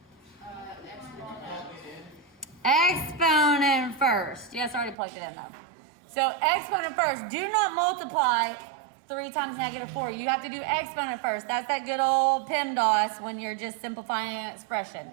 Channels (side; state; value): left; drops out; at 5.0 s